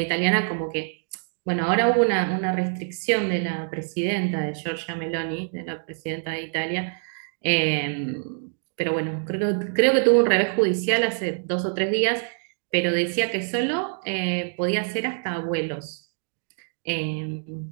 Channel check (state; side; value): silent; left; 61 dB below the other